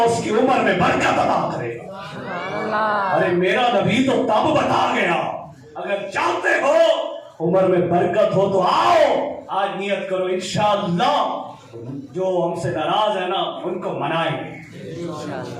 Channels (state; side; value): identical; both; correlation 1.00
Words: کی عمر میں برکت عطا کرے گا۔ ارے میرا نبی تو تب بتا گیا، اگر چاہتے ہو عمر میں برکت ہو تو آؤ، آج نیت کرو انشاءاللہ جو ہم سے ناراض ہے نا ان کو منائیں گے۔